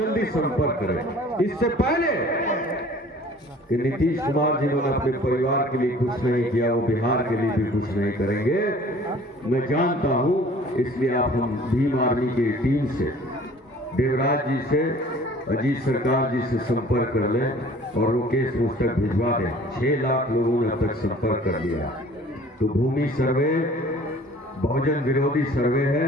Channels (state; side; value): normal; both; correlation 0.50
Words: संपर्क करें। इससे पहले कि नीतीश कुमार जिन्होंने अपने परिवार के लिए कुछ नहीं किया, वो बिहार के लिए भी कुछ नहीं करेंगे, मैं जानता हूं। इसलिए आप हम भीम आर्मी की टीम से, देवराज जी से, अजीत सरकार जी से संपर्क कर लें और वो केस मुझ तक भिजवा दें। 6 लाख लोगों ने अब तक संपर्क कर लिया। तो भूमि सर्वे बहुजन विरोधी सर्वे है।